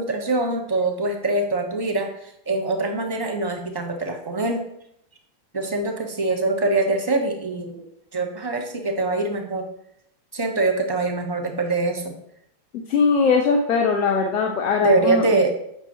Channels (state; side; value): late; right; 1.1 ms